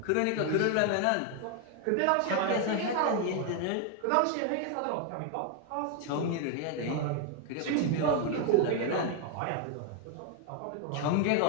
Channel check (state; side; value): different; both; correlation 0.01